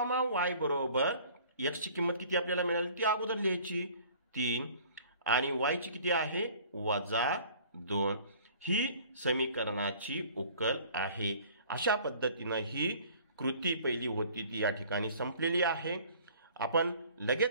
y बरोबर x ची किंमत किती आपल्याला मिळाली ती अगोदर लिहायची 3 आणि y ची किती आहे वजा 2. ही समीकरणाची उकल आहे. अशा पद्धतीनं ही कृती पहिली होती ती या ठिकाणी संपलेली आहे. आपण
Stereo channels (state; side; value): inverted; both; correlation -0.51